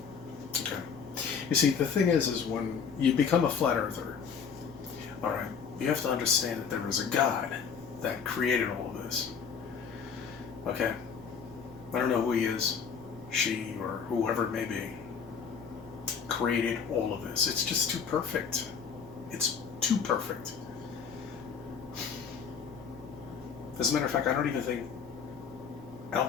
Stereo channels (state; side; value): quieter; right; 6.4 dB